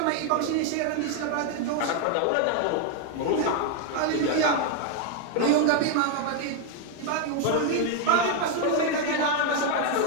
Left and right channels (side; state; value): both; different; correlation 0.00